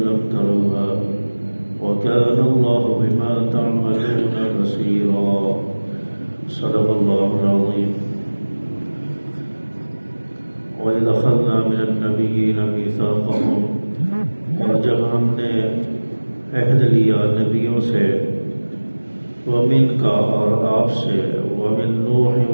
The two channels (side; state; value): both; inverted; correlation -1.00